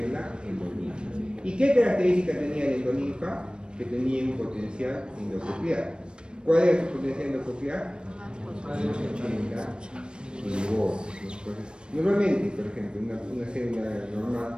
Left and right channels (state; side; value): late; left; 0.054 ms